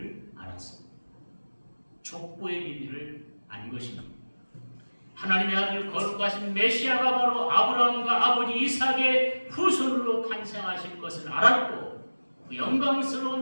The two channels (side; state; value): both; inverted; correlation -1.00